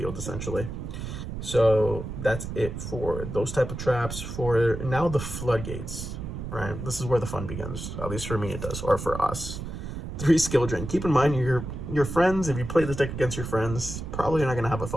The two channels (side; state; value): right; noise; rumble, 7 dB below the sound